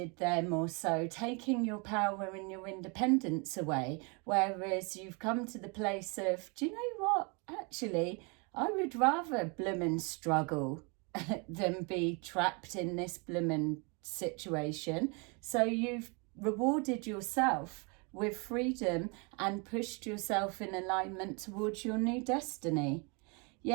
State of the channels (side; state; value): left; quieter; 32.2 dB